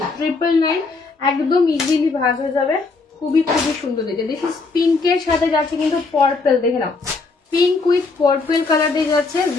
999 একদম ইজিলি ভাজ হয়ে যাবে, খুবই খুবই সুন্দর দেখে। দেখি পিঙ্কের সাথে যাচ্ছে কিন্তু পার্পল, দেখে নাও পিঙ্ক উইথ পার্পল কালার দিয়ে যাচ্ছে,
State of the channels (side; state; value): right; quieter; 4.0 dB